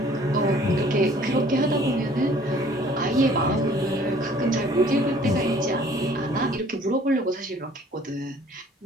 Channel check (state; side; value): normal; both; correlation 0.55